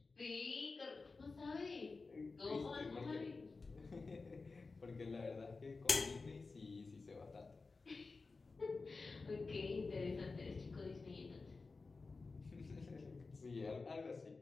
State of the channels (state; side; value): quieter; right; 4.0 dB